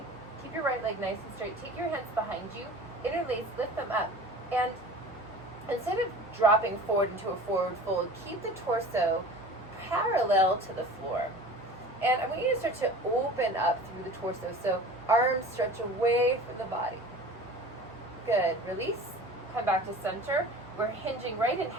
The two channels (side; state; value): both; normal; correlation 0.40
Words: keep your right leg nice and straight, take your hands behind you, interlace, lift them up, and instead of dropping forward into a forward fold, keep the torso parallel to the floor. And I want you to start to open up through the torso, so arms stretch away from the body. Good, release, come back to center. We're hinging right in